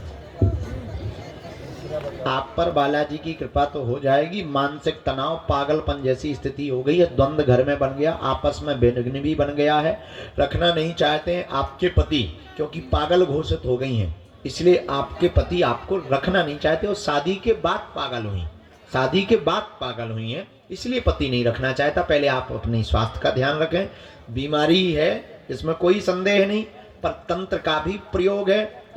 आप पर बालाजी की कृपा तो हो जाएगी। मानसिक तनाव, पागलपन जैसी स्थिति हो गई है, द्वंद्व घर में बन गया, आपस में विघ्न भी बन गया है। रखना नहीं चाहते हैं आपके पति, क्योंकि पागल घोषित हो गई हैं, इसलिए आपके पति आपको रखना नहीं चाहते। और शादी के बाद पागल हुई, शादी के बाद पागल हुई हैं, इसलिए पति नहीं रखना चाहता। पहले आप अपने स्वास्थ्य का ध्यान रखें। बीमारी है इसमें कोई संदेह नहीं, पर तंत्र का भी प्रयोग है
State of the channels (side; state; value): both; identical; correlation 1.00